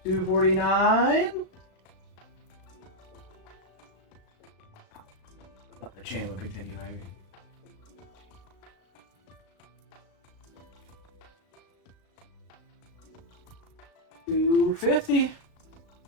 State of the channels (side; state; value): right; late; 36 ms